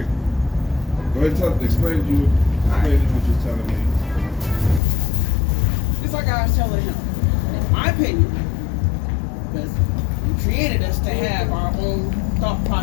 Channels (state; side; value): drops out; right; at 4.8 s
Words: Go ahead and explain what you're telling me. It's like I was telling him, in my opinion, because he created us to have our own thought